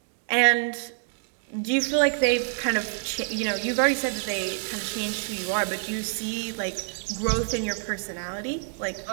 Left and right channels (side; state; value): left; silent; 60 dB below the other